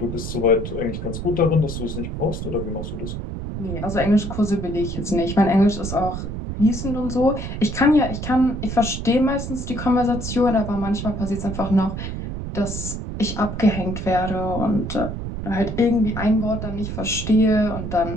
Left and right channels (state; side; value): noise; right; rumble, 6 dB below the sound